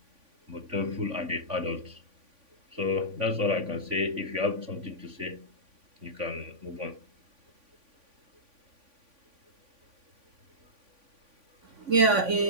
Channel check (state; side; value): late; left; 3.5 ms